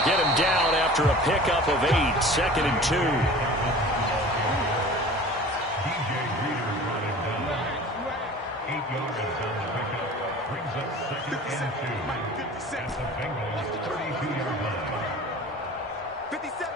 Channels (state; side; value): normal; both; correlation 0.41